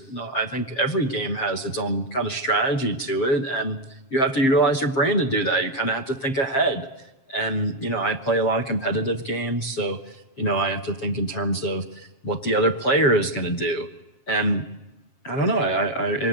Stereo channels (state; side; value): late; right; 7.5 ms